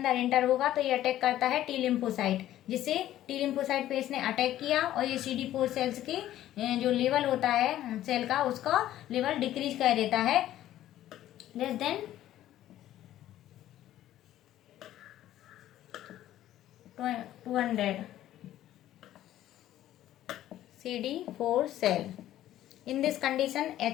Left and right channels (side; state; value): right; quieter; 13.1 dB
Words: एंटर होगा तो ये अटैक करता है T लिम्फोसाइट, जिससे T लिम्फोसाइट पे इसने अटैक किया और ये CD4 सेल्स के जो लेवल होता है सेल का, उसका लेवल डिक्रीज कर देता है less than 200 CD4 cell. In this condition